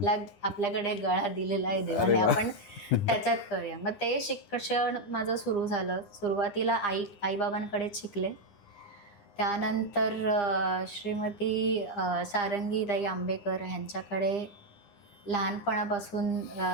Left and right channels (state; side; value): late; right; 9.9 ms